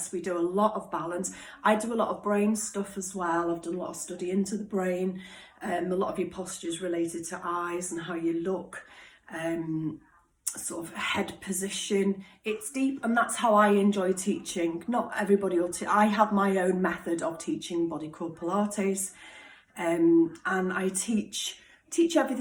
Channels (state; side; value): identical; both; correlation 1.00